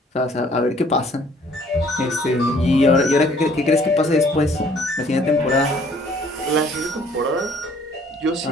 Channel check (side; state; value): both; normal; correlation 0.58